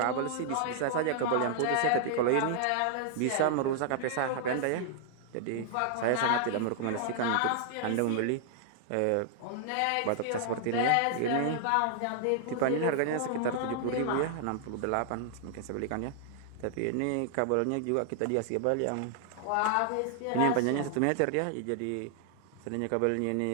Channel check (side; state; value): both; different; correlation 0.00